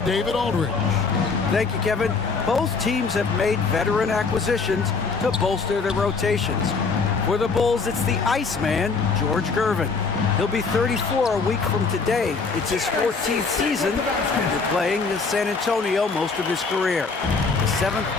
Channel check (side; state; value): right; quieter; 4.7 dB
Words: Aldridge. Thank you, Kevin. Both teams have made veteran acquisitions to bolster their rotations. For the Bulls, it's the Iceman, George Gervin. He'll be 34 a week from today. It's his 14th season after playing in San Antonio most of his career. The